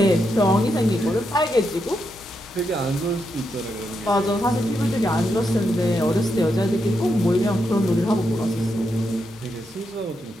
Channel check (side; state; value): both; normal; correlation 0.83